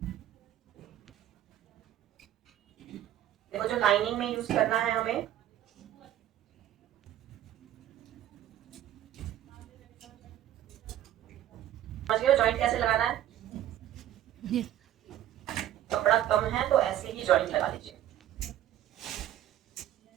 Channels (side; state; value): left; quieter; 12.3 dB